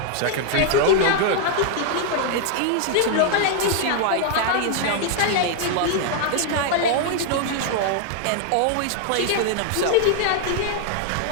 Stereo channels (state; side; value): different; both; correlation 0.00